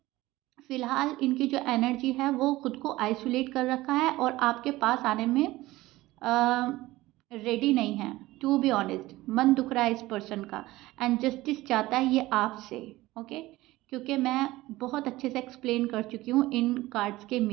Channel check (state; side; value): quieter; left; 18.1 dB